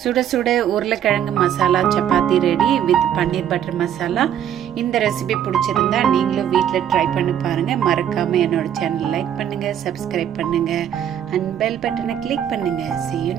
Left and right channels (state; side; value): quieter; left; 9.9 dB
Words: சுட சுட உருளைக்கிழங்கு masala chapati ready with paneer butter masala. இந்த ரெசிபி பிடிச்சிருந்தா நீங்களும் வீட்டில் ட்ரை பண்ணி பாருங்கள். மறக்காமல் என்னோட சேனல் லைக் பண்ணுங்கள், சப்ஸ்கிரைப் பண்ணுங்கள் அண்ட் பெல் பட்டனை கிளிக் பண்ணுங்கள். See you